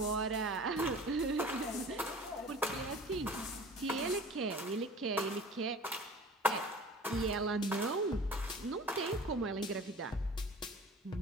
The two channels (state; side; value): normal; both; correlation 0.43